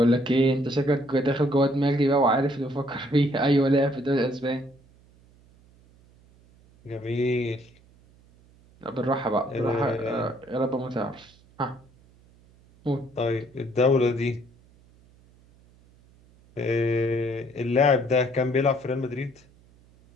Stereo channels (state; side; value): noise; right; hum, 29 dB below the sound